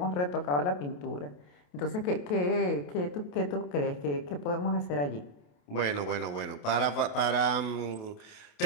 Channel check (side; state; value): right; late; 28 ms